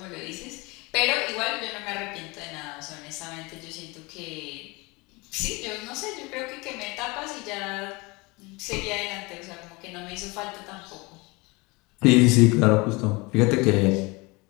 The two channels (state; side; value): quieter; right; 25.6 dB